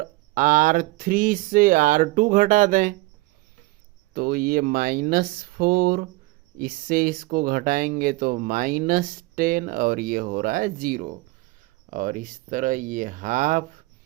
R3 से R2 घटा दें तो ये -4, इससे इसको घटाएंगे तो -10, और ये हो रहा है 0। और इस तरह ये हाफ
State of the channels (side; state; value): left; quieter; 21.5 dB